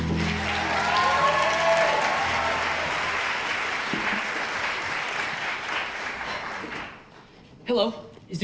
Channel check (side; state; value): both; identical; correlation 1.00